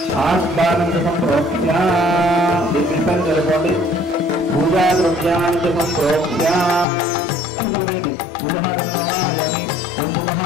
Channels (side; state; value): right; drops out; at 6.9 s